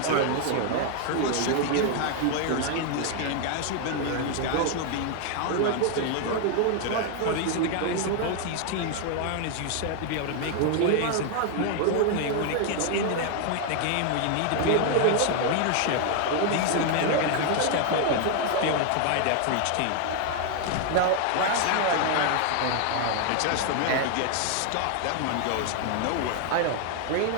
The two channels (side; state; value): both; different; correlation 0.00